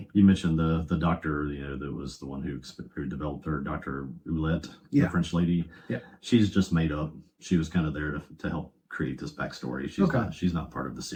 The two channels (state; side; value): identical; both; correlation 1.00